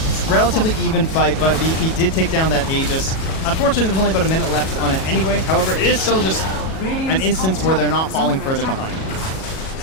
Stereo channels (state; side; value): late; right; 37 ms